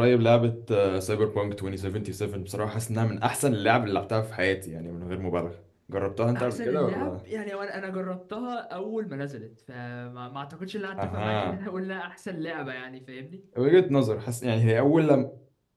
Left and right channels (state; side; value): identical; both; correlation 1.00